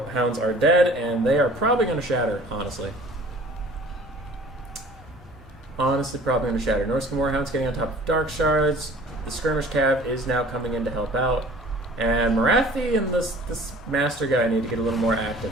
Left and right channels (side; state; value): both; normal; correlation 0.49